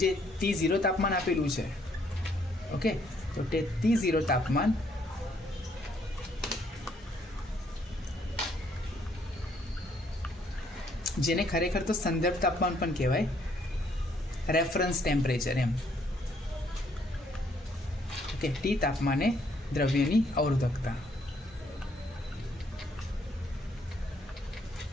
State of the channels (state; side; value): normal; both; correlation 0.68